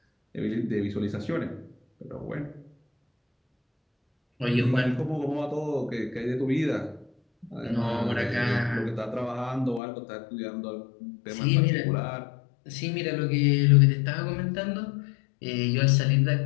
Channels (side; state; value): right; drops out; at 9.8 s